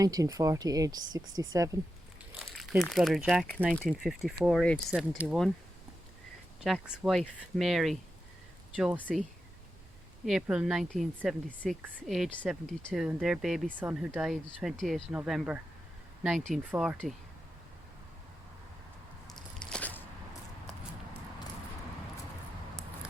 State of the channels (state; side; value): normal; both; correlation 0.89